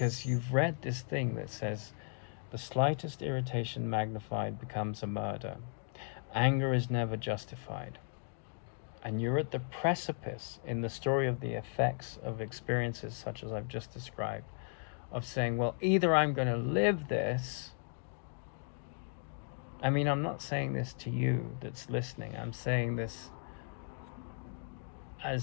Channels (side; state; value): right; silent; 54 dB below the other